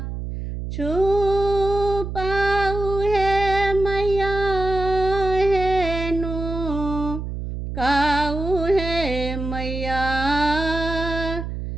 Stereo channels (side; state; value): right; noise; hum, 6 dB below the sound